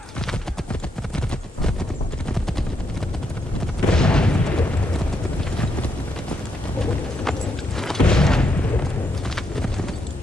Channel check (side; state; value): both; normal; correlation 0.78